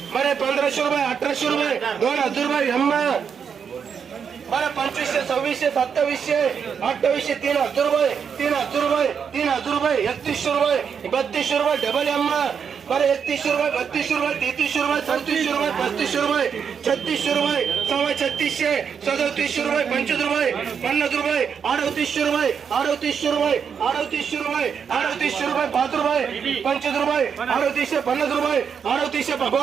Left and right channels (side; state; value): left; quieter; 6.9 dB